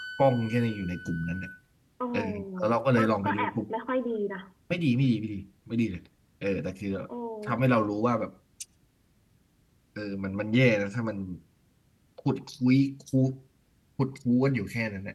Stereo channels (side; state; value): both; identical; correlation 1.00